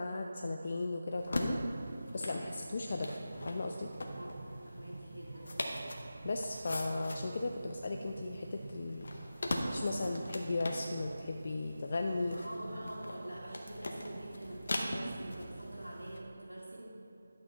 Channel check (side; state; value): both; inverted; correlation -0.94